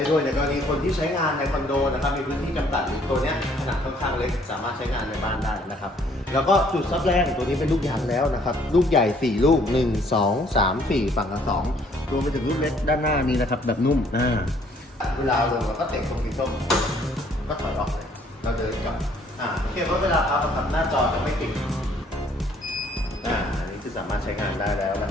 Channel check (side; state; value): both; normal; correlation 0.62